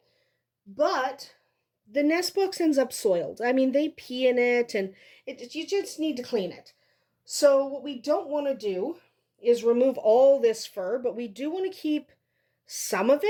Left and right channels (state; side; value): identical; both; correlation 1.00